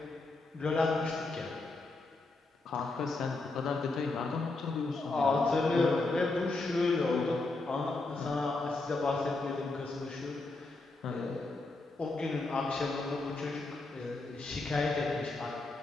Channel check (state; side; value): quieter; right; 3.3 dB